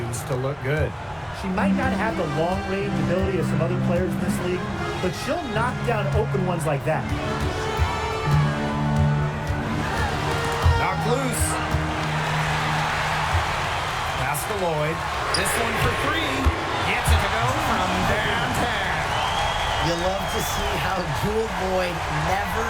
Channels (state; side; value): identical; both; correlation 1.00